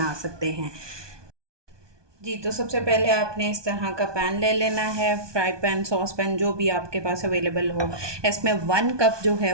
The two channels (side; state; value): left; late; 1.2 ms